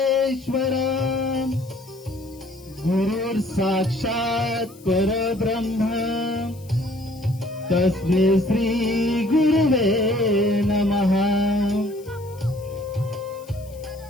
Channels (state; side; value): noise; left; hiss, 25 dB below the sound